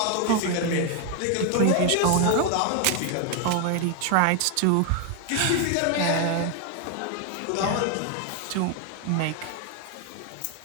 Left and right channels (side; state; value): both; different; correlation 0.01